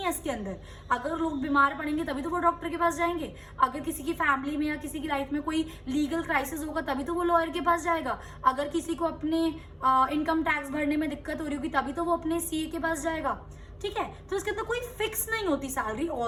है इसके अंदर। अगर लोग बीमार पड़ेंगे तभी तो वो डॉक्टर के पास जाएंगे, अगर किसी की फैमिली में या किसी की लाइफ में कोई लीगल क्राइसिस होगा तभी तो वो लॉयर के पास जाएगा, अगर किसी को अपने इनकम टैक्स भरने में दिक्कत हो रही होगी तभी तो वो अपने सीए के पास जाएगा। ठीक है, तो इसके अंदर कोई फिक्स नहीं होती सैलरी,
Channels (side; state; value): both; identical; correlation 1.00